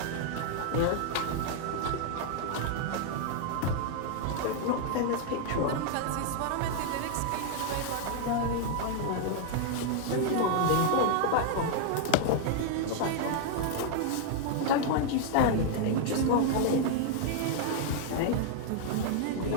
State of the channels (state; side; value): different; both; correlation 0.00